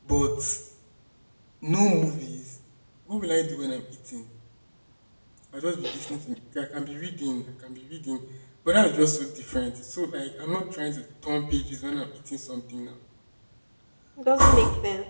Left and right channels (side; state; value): both; inverted; correlation -1.00